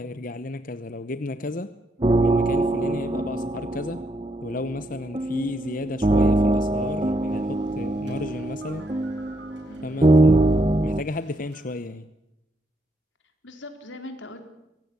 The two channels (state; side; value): normal; both; correlation 0.77